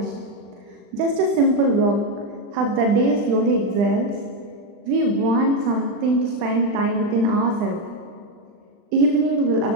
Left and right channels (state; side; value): late; left; 39 ms